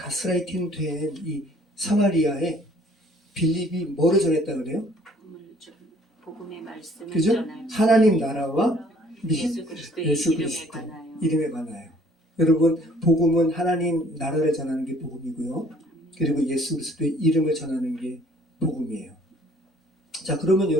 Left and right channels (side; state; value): both; normal; correlation 0.57